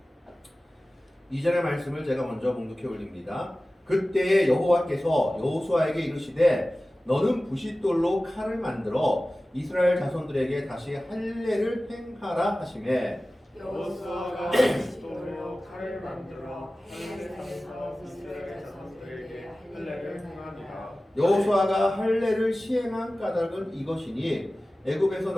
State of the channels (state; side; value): normal; both; correlation 0.96